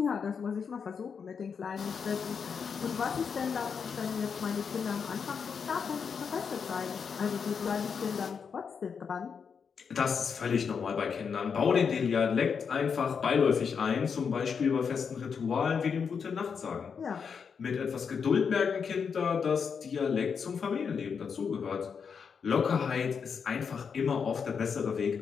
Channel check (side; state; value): right; quieter; 6.3 dB